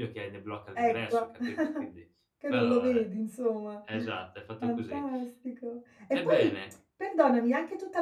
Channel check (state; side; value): identical; both; correlation 1.00